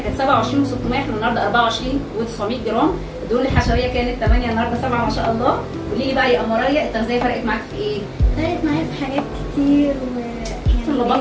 كانت 27 و600، احنا النهارده 24 و900 جرام. الدهون الحشويه كانت 8، النهارده 7 ما شاء الله. قولي لي بقى يا اماريه، التغذيه فرقت معاك في ايه؟ فرقت معايا في حاجات كتير شفتوا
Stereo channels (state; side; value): identical; both; correlation 1.00